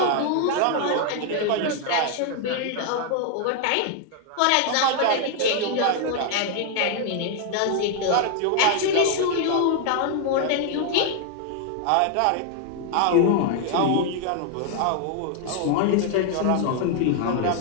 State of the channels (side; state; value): both; different; correlation 0.00